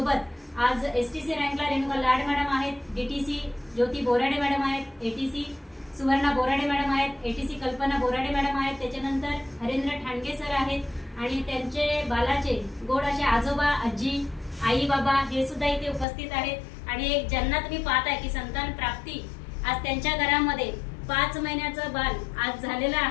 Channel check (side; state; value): right; drops out; at 16.1 s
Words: आज एसटीसी रँकला रेणुका लाड मॅडम आहेत, डीटीसी ज्योती बोराडे मॅडम आहेत, एटीसी सुवर्णा बोराडे मॅडम आहेत, एटीसी कल्पना बोराडे मॅडम आहेत, त्याच्यानंतर हरेंद्र ठाणगे सर आहेत आणि त्यांचे बालाचे गोड असे आजोबा आजी आई बाबा हे सुद्धा इथे उपस्थित आहेत। आणि एक ज्यांना तुम्ही पाहताय की संतान प्राप्ती आज त्यांच्या घरामध्ये 5 महिन्याचं बाल आज झालेलं